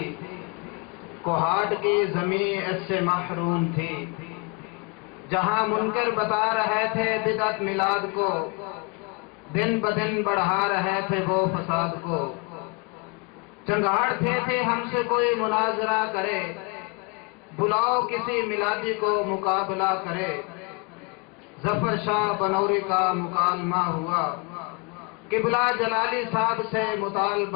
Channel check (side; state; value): right; quieter; 30.4 dB